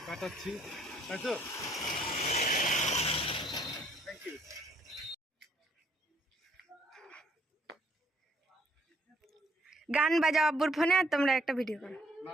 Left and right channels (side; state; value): both; normal; correlation 0.65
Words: কাটাচ্ছি, তাই তো? Thank you. গান বাজাও আব্বুর ফোনে, আর তোমরা একটা ভিডিও করো। না